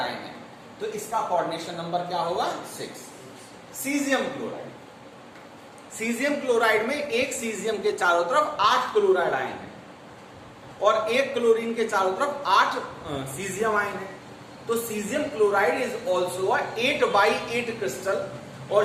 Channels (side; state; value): both; identical; correlation 1.00